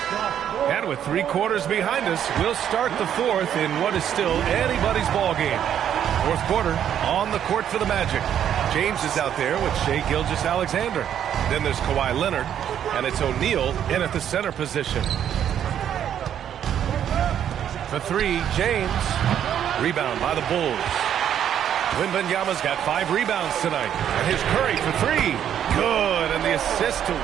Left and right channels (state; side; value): quieter; left; 9.7 dB